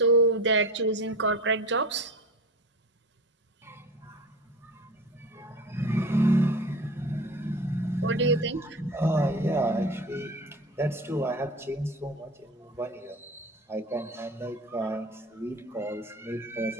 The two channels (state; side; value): normal; both; correlation 0.33